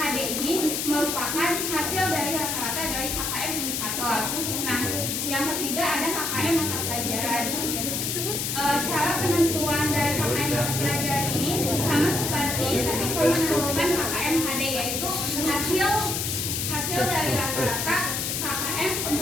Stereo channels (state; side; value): noise; left; hiss, 1 dB below the sound